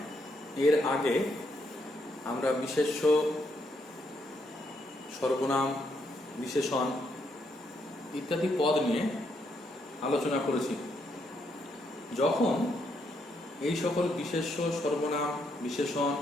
এর আগে আমরা বিশেষ্য, সর্বনাম, বিশেষণ ইত্যাদি পদ নিয়ে আলোচনা করেছি। যখন এই সকল বিশেষ্য, সর্বনাম, বিশেষণ,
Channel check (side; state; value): both; normal; correlation 0.76